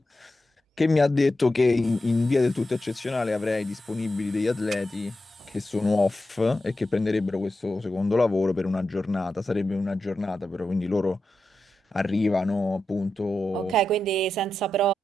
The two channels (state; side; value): normal; both; correlation 0.90